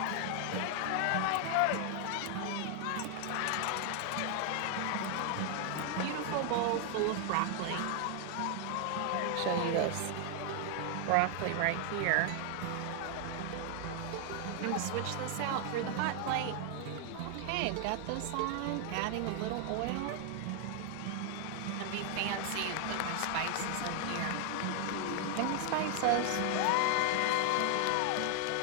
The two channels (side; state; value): both; different; correlation 0.00